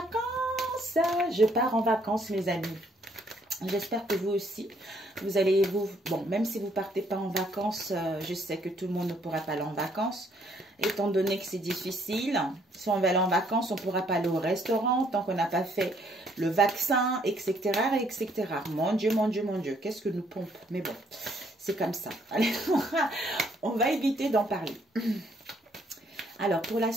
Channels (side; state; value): both; normal; correlation 0.67